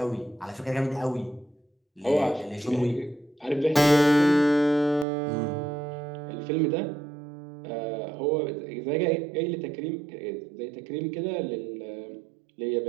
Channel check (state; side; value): drops out; left; at 5.1 s